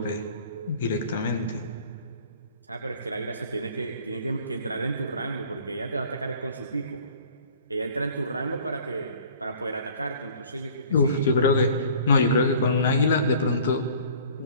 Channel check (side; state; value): both; inverted; correlation -0.50